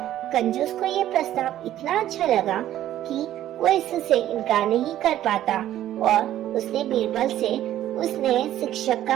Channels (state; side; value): quieter; left; 12.6 dB